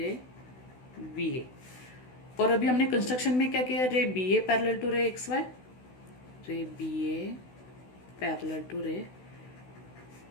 बी ए। और अभी हमने कंस्ट्रक्शन में क्या किया, रे B A parallel to ray X Y, रे B A parallel to ray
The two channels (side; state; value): right; late; 16 ms